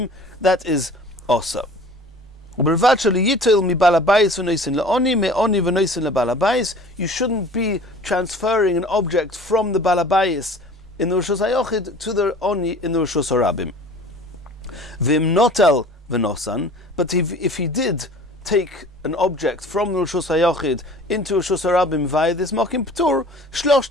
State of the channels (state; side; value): normal; both; correlation 0.45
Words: that is also. You shouldn't be transferring an object from the balabayis in the Reshus HaYochid to the oni in the Reshus HaRabim. V'im notel v'nosan, but if he did take an object from the Reshus HaYochid into Reshus HaRabim via this mokim ptur,